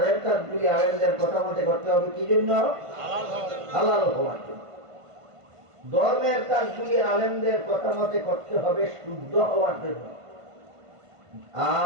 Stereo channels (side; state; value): left; late; 1.5 ms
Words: কাজগুলি আলেমদের কথা মতে করতে হবে কি জন্য? হালাল হওয়ার জন্য। ধর্মের কাজগুলি আলেমদের কথা মতে করতে হবে শুদ্ধ হওয়ার জন্য।